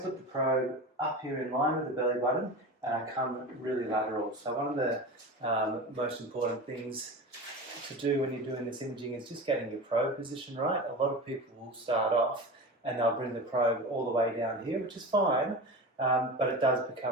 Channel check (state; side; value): normal; both; correlation 0.29